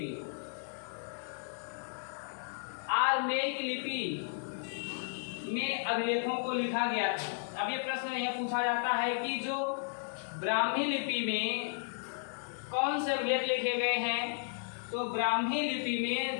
में अभिलेखों को लिखा गया था। अब ये प्रश्न यह पूछा जाता है कि जो ब्राह्मी लिपि में कौन से अभिलेख लिखे गए हैं? तो ब्राह्मी लिपि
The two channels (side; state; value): right; silent; digital silence